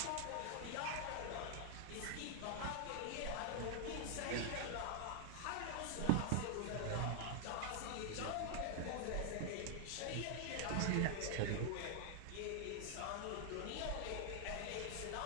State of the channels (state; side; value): different; both; correlation -0.01